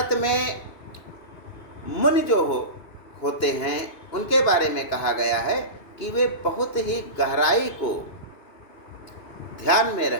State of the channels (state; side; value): late; right; 2.9 ms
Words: में मुनि जो होते हैं, उनके बारे में कहा गया है कि वे बहुत ही गहराई को ध्यान में